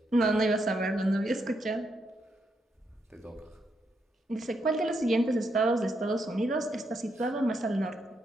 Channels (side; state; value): both; normal; correlation 0.79